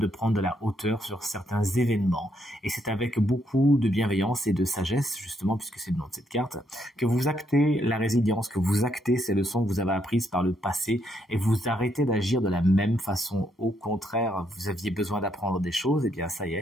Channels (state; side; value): normal; both; correlation 0.75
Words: prendre de la hauteur sur certains événements. Et c'est avec beaucoup de bienveillance et de sagesse, justement, puisque c'est le nom de cette carte, que vous actez la résilience, que vous actez ces leçons que vous avez apprises par le passé et vous arrêtez d'agir de la même façon. Au contraire, vous aviez besoin d'apprendre des choses, et bien ça y